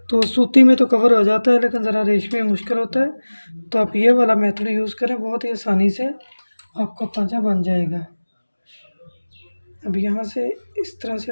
तो सूती में तो कवर हो जाता है, लेकिन ज़रा रेशमी में मुश्किल होता है। तो आप ये वाला मेथड यूज़ करें, बहुत ही आसानी से आपका पाँचा बन जाएगा। अब यहाँ से इस तरह से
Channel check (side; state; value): both; inverted; correlation -1.00